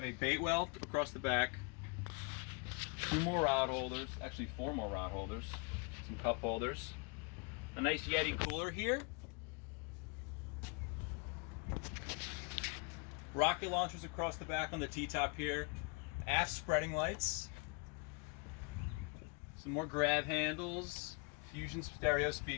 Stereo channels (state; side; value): quieter; right; 31.8 dB